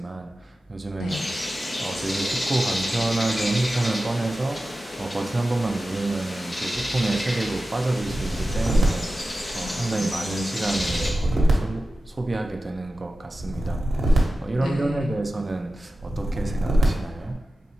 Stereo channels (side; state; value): both; normal; correlation 0.94